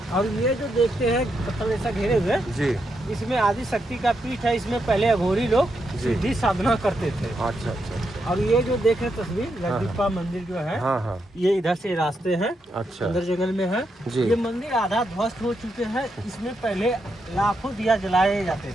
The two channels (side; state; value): both; normal; correlation 0.82